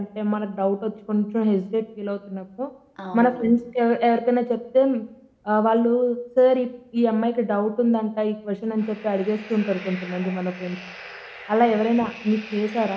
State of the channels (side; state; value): both; identical; correlation 1.00